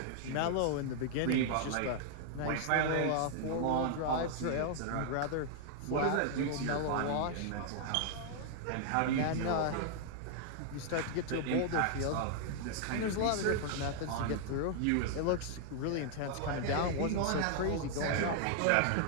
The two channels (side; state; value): both; different; correlation -0.01